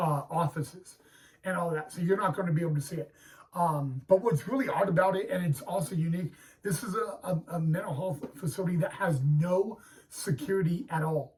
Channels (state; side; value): identical; both; correlation 1.00